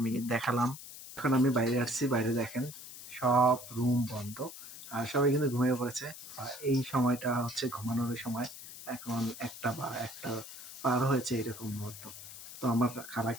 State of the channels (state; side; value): noise; left; hiss, 13 dB below the sound